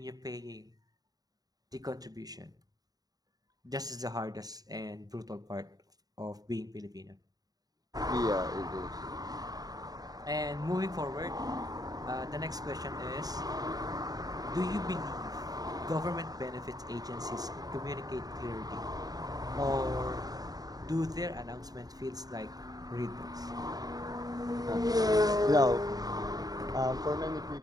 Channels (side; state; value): left; late; 0.18 ms